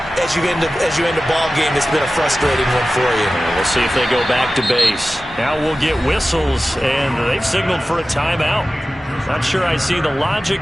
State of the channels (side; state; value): both; normal; correlation 0.95